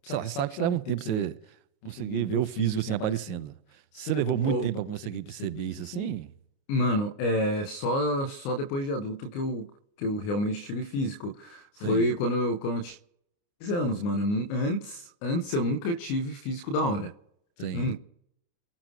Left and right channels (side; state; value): right; late; 29 ms